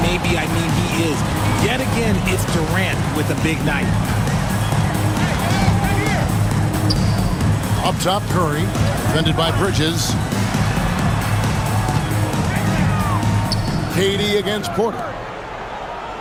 I mean he is. Yet again, it's Durant with a big night. Up top, Curry. Defended by Bridges. KD against Porter.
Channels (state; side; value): identical; both; correlation 1.00